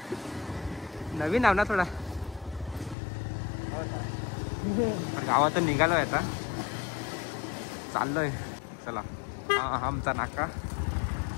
नवीन आव ना थोडा. गावातून निघालोय आता, चाललोय. चला, हा आमचा नाका.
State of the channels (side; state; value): right; drops out; at 3.0 s